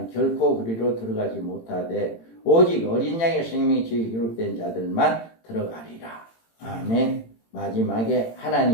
결코 그리로 들어가지 못하되 오직 어린 양의 생명책에 기록된 자들만 들어가리라. 아멘. 마지막에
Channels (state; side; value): late; right; 18 ms